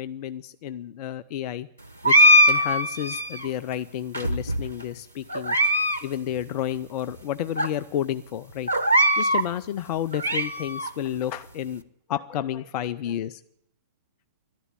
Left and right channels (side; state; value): both; inverted; correlation -0.46